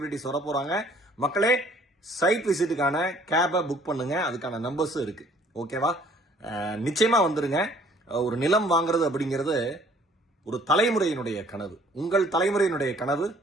வர போறாங்க. மக்களே, சைட் விசிட்டுக்கான கேபை புக் பண்ணுங்க, அதுக்கான நம்பர்ஸும் இருக்கு. ஓகேவா? நிச்சயமா வந்துருங்க. ஒரு நிலம் வாங்குறது அப்படிங்கிறது ஒரு தலைமுறையினுடைய கனவு. உங்கள் தலைமுறையினுடைய கனவு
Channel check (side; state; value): both; normal; correlation 0.58